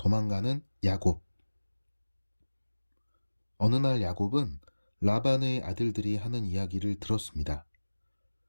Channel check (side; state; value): both; inverted; correlation -1.00